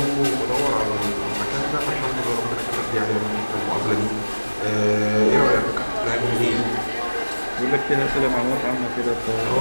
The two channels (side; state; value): both; inverted; correlation -1.00